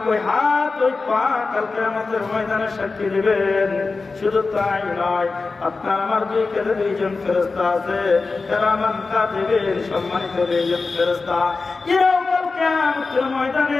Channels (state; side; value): quieter; right; 4.0 dB